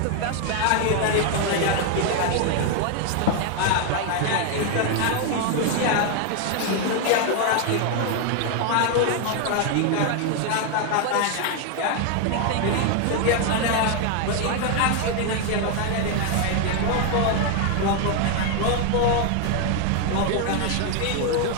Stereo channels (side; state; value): both; different; correlation 0.01